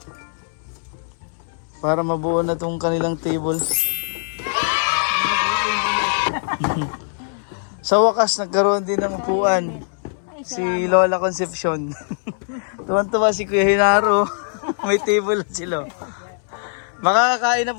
Para mabuo na tong kanilang table. Sa wakas, nagkaroon din ng upuan. Si Lola Concepcion. Tuwan-tuwa si Kuya Hinaro. May table na sila. Makakakain na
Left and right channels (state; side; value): silent; right; 62 dB below the other